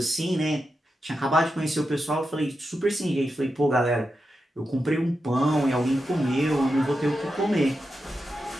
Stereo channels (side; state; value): both; normal; correlation 0.89